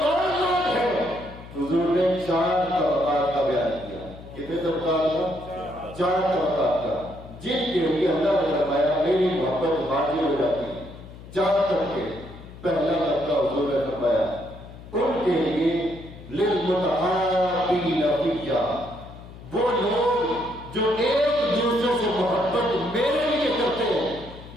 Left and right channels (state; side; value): noise; left; hum, 16 dB below the sound